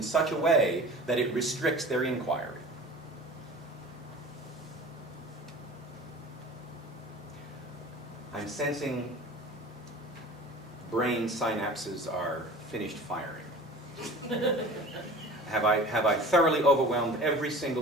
such a way that it restricts their inquiry. I'm sensing brain synapses are finished firing. Have I thoroughly overwhelmed every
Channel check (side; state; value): both; normal; correlation 0.40